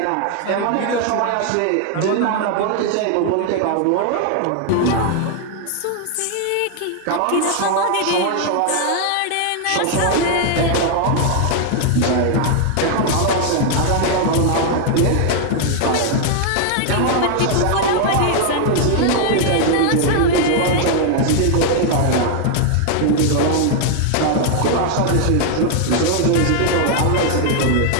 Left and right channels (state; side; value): different; both; correlation 0.00